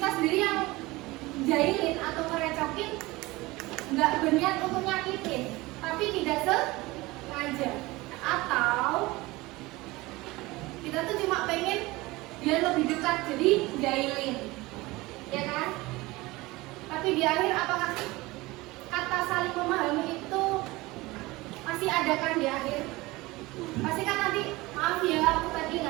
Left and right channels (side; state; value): left; quieter; 21.0 dB